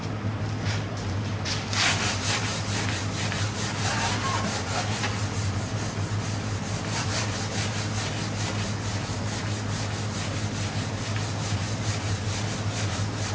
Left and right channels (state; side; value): identical; both; correlation 1.00